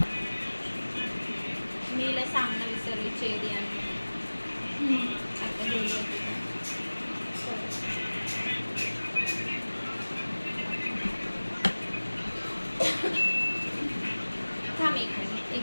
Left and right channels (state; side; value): inverted; both; correlation -1.00